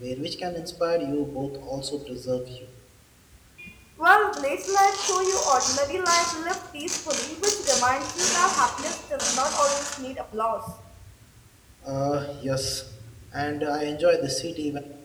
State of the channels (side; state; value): both; identical; correlation 1.00